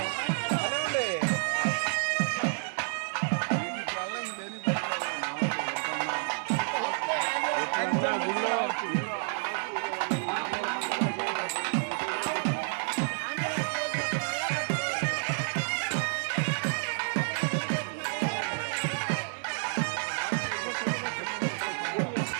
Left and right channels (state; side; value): silent; left; 58 dB below the other